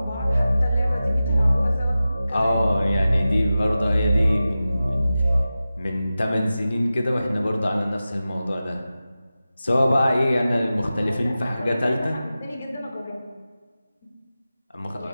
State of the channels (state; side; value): inverted; both; correlation -0.94